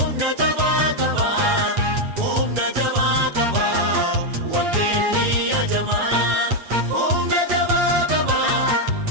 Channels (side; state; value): left; late; 8.5 ms